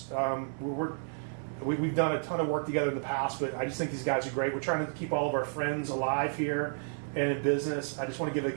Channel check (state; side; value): silent; left; digital silence